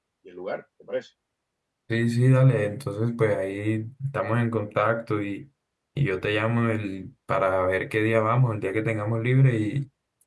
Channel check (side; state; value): both; identical; correlation 1.00